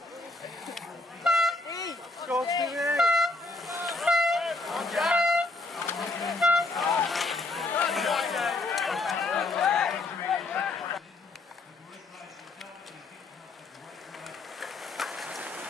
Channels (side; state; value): right; quieter; 3.1 dB